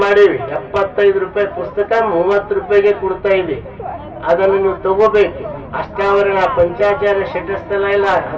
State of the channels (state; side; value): identical; both; correlation 1.00